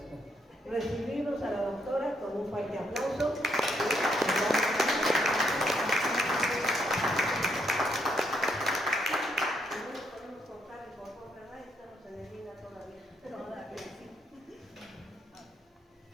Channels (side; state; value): both; normal; correlation 0.74